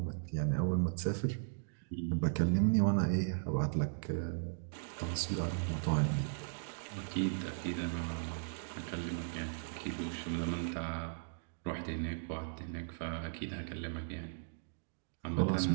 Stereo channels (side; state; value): left; silent; digital silence